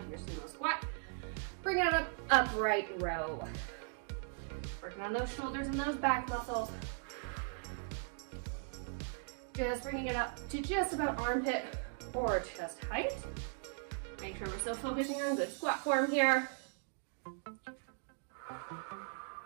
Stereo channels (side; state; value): left; silent; 52 dB below the other